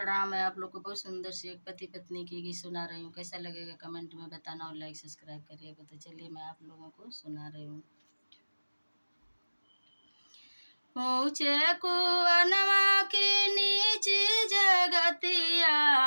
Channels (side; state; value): both; inverted; correlation -1.00